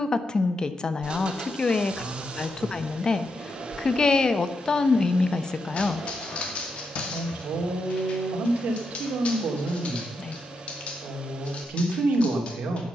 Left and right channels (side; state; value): both; normal; correlation 0.83